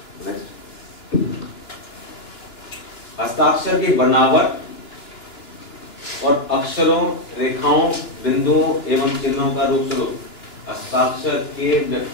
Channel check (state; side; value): late; right; 2.9 ms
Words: हस्ताक्षर की बनावट और अक्षरों, रेखाओं, बिंदुओं एवं चिन्हों का रूप स्वरूप हस्ताक्षर के